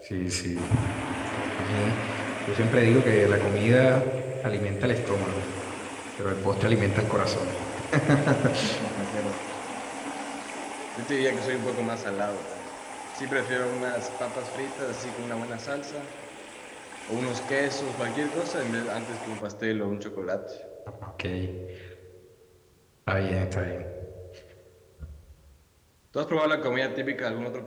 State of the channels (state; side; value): identical; both; correlation 1.00